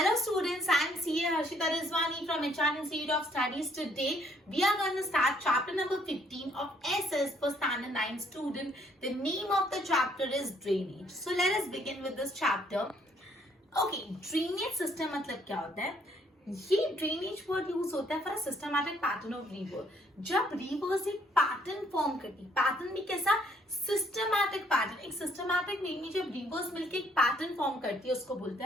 students, I am CA Harshita Rizwani from HR Institute of Studies. Today we are going to start chapter number 15 of SS for standard 9 student. The name of the chapter is drainage. So let us begin with this chapter. Okay, drainage system मतलब क्या होता है? ये drainage word use होता है for a systematic pattern of river. जब reverse एक pattern form करती, पैटर्न भी कैसा? Systematic pattern. एक सिस्टमैटिक वे में जब रिवर्स मिलकर एक पैटर्न फॉर्म करती है उसको बोलते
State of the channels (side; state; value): both; normal; correlation 0.66